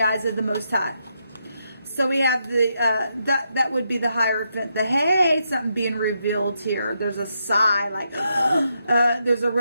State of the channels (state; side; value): inverted; both; correlation -0.81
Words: eyes of the Most High. So we have that would be the Hierophant. Hey, something being revealed here. There's a sigh, like there's a